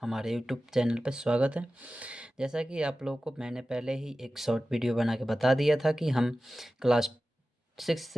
हमारे यूट्यूब चैनल पर स्वागत है। जैसा कि आप लोगों को मैंने पहले ही एक शॉर्ट वीडियो बना के बता दिया था कि हम क्लास 6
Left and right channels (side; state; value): both; normal; correlation 0.95